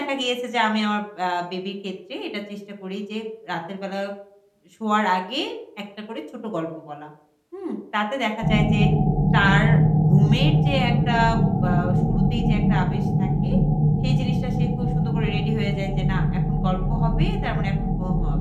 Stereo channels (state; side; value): identical; both; correlation 1.00